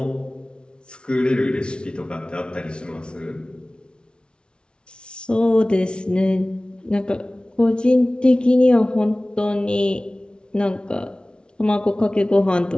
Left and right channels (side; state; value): right; late; 0.056 ms